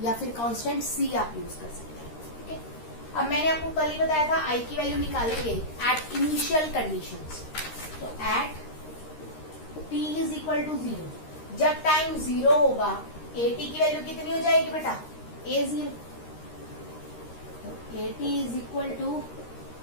या फिर कांस्टेंट सी आप यूज कर सकते हैं, ठीक है। अब मैंने आपको कल ही बताया था आई की वैल्यू निकालेंगे एट इनिशियल कंडीशंस। तो at T is equal to 0, जब टाइम 0 होगा ए टी की वैल्यू कितनी हो जाएगी बेटा, ए 0। तो A T is equal to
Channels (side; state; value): right; late; 13 ms